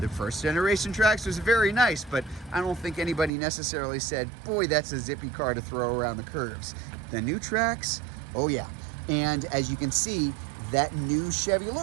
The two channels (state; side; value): drops out; left; at 3.3 s